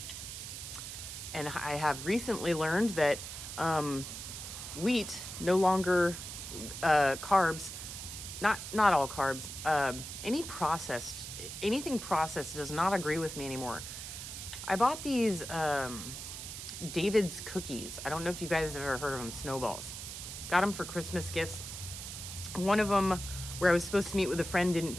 And I have recently learned that wheat, no longer carbs, not all carbs, anything processed does not agree with me anymore. I bought these David's cookies. I don't know if you guys have ever heard of them, snowballs. Got them for Christmas gifts. One of them, where I was supposed to meet with a friend, didn't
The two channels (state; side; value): noise; right; hiss, 9 dB below the sound